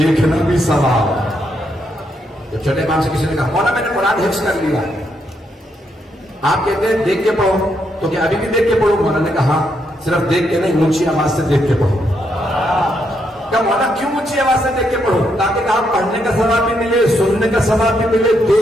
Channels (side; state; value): both; normal; correlation 0.78